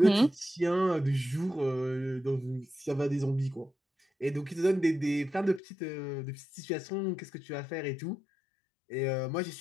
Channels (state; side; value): drops out; right; at 5.6 s